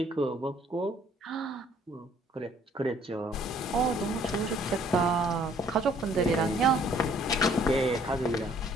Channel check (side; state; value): both; normal; correlation 0.61